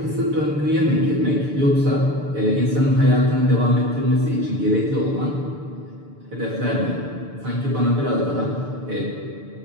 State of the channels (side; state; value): left; late; 6.9 ms